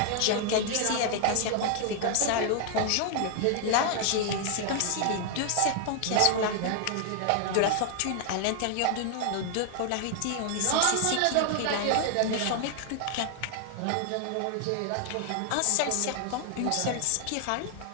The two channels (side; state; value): both; different; correlation 0.00